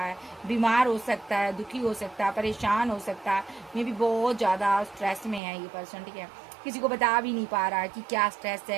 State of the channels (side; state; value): left; drops out; at 5.4 s